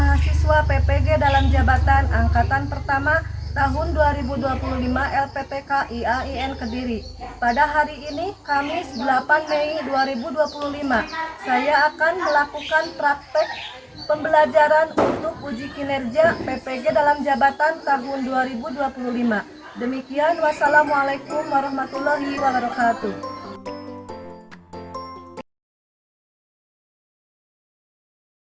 PPG dalam jabatan Angkatan Pertama tahun 2025 LPTK IAIN Kediri. Pada hari ini, Kamis 8 Mei 2025, saya akan melakukan praktek pembelajaran untuk uji kinerja PPG dalam jabatan tahun 2025. Demikian, wassalamualaikum warahmatullahi wabarakatuh.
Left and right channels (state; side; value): identical; both; correlation 1.00